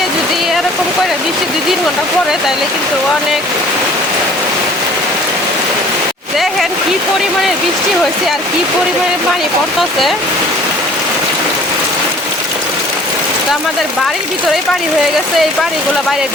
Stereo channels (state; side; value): normal; both; correlation 0.51